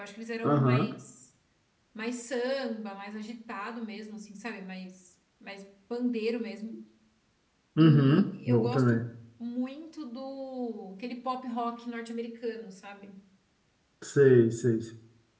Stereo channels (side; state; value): both; identical; correlation 1.00